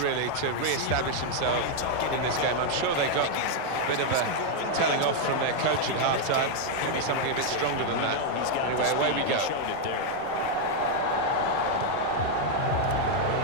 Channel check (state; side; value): different; both; correlation 0.00